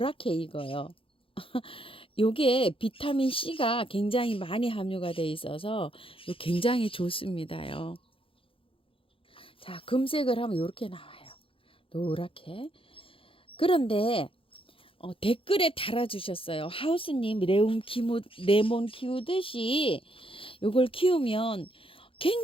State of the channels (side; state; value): right; late; 0.26 ms